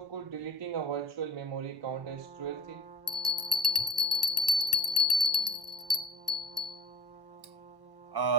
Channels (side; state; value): left; late; 1.1 ms